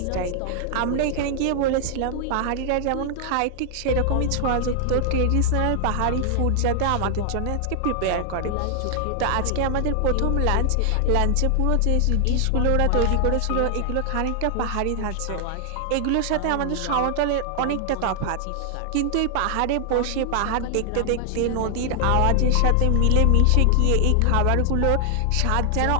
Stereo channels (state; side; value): different; both; correlation 0.00